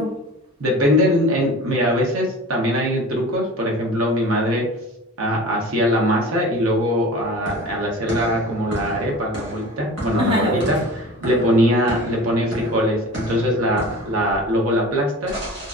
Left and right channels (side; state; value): both; normal; correlation 0.38